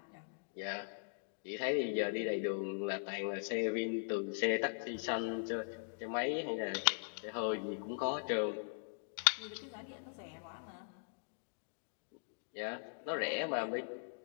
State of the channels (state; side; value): silent; right; digital silence